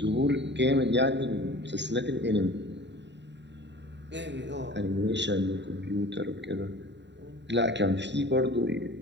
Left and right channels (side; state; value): left; late; 0.52 ms